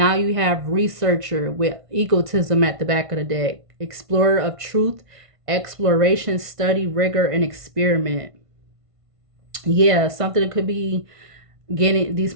you have researcher with egotism at the back of the deck. Explorer of truth, exploration, study, rigor, and experiment. Yeah, something that could be getting, these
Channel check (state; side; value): late; left; 1.5 ms